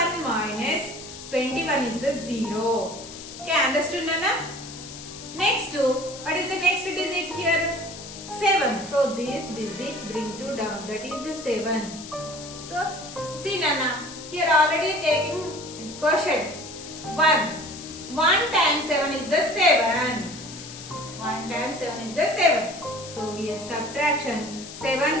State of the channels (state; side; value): noise; left; hiss, 13 dB below the sound